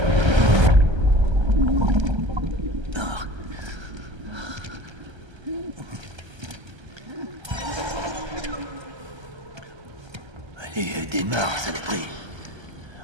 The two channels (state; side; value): late; left; 1.3 ms